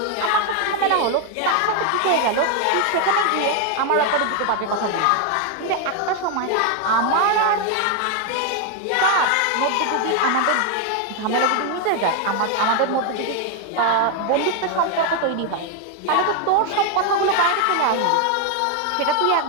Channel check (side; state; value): both; different; correlation 0.01